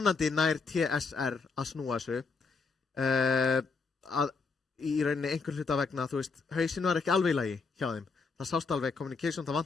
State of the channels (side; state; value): right; quieter; 4.6 dB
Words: nær TSR að snúa þessu að í rauninni einhver hluta vegna hausinn var ekki alveg í lagi hjá þeim það sást alveg communication, það